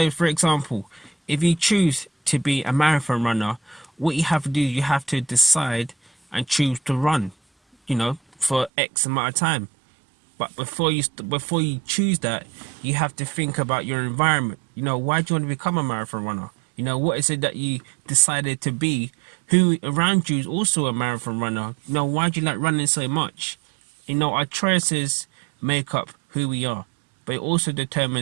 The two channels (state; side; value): drops out; left; at 8.7 s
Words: for example, if you choose to be a marathon runner, what you have to do, you have to decide and choose to run, for X amount of time. But before you choose that, you have to think about your environment. Why do you want to become a marathon runner? What is it that you decided to be? Who around you is also a marathon runner? Why do you like running so much? Our choices make up who we are, but it also